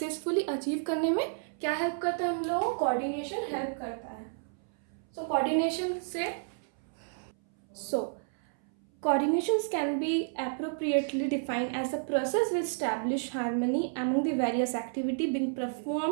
अचीव करने में क्या हेल्प करता है हम लोगों को, कोऑर्डिनेशन हेल्प करता है। सो कोऑर्डिनेशन से coordinations can be appropriately defined as a process which establish harmony among the various activity being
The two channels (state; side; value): silent; left; 57 dB below the other